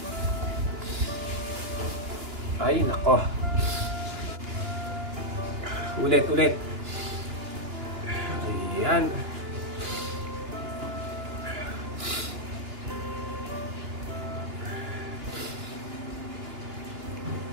Ay, nako. Ulit. Ayan.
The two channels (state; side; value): late; left; 2.9 ms